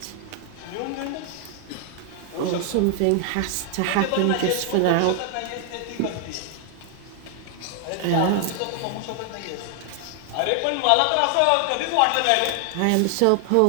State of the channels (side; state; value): both; different; correlation 0.00